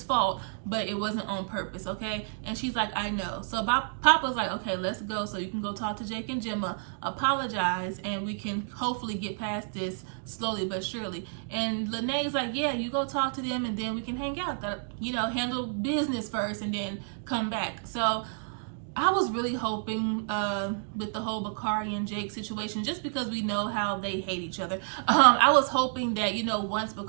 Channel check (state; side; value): silent; left; digital silence